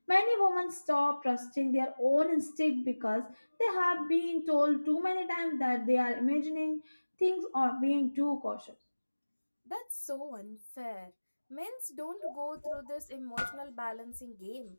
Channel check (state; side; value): inverted; both; correlation -1.00